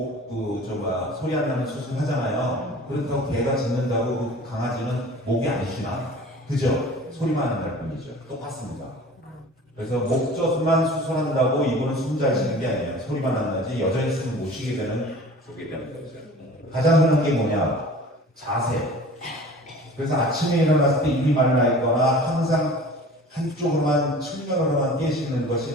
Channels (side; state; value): both; normal; correlation 0.43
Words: 소리 안 나는 수술 하잖아요. 그렇다고 개가 짖는다고 그 강아지는 목이 안 쉬나? 그죠? 소리만 안 날 뿐이죠. 똑같습니다. 그래서 목젖만 수술한다고 이분은 숨 잘 쉬는 게 아니에요. 소리만 안 나지 여전히 숨을 못 쉬게 되는 거죠. 가장 흔한 게 뭐냐? 자세. 그래서 아침에 일어났을 때 입이 말라 있거나 항상 한쪽으로만 측면으로만 깨시는